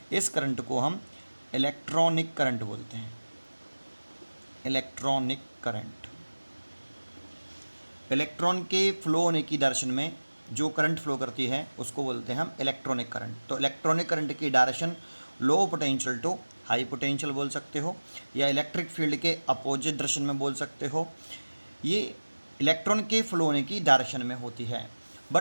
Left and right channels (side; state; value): both; inverted; correlation -1.00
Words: इस करंट को हम इलेक्ट्रॉनिक करंट बोलते हैं। इलेक्ट्रॉनिक करंट, इलेक्ट्रॉन के फ्लो होने की डायरेक्शन में जो करंट फ्लो करती है उसको बोलते हैं हम इलेक्ट्रॉनिक करंट। तो इलेक्ट्रॉनिक करंट की direction low potential to high potential बोल सकते हो या इलेक्ट्रिक फील्ड के अपोजिट डायरेक्शन में बोल सकते हो। ये इलेक्ट्रॉन के फ्लो होने की डायरेक्शन में होती है।